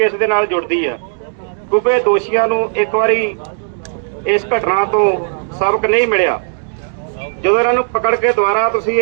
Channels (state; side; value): silent; left; digital silence